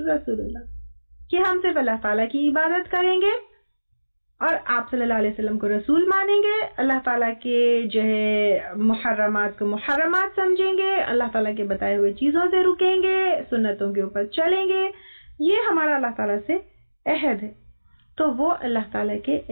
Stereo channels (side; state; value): both; inverted; correlation -1.00